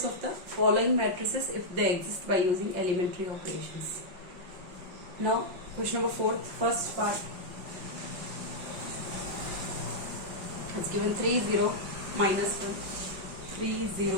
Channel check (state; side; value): late; left; 5.3 ms